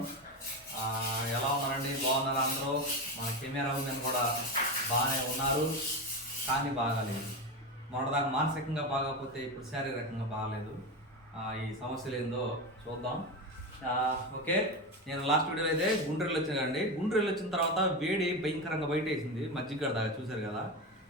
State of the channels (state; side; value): normal; both; correlation 0.18